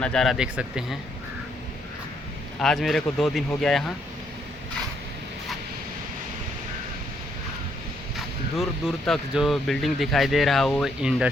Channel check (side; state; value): both; normal; correlation 0.72